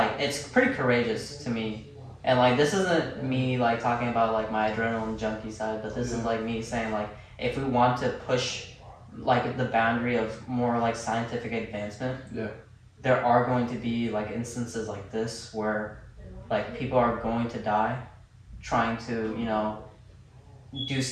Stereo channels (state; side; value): identical; both; correlation 1.00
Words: it's pretty courageous to me. And like this isn't me like talking about like my adrenaline junkie side, but this is like me saying like if we want to push like the boundary of more like scientific advancement, there are going to be like instances like this where like people are going to die trying to, you know, do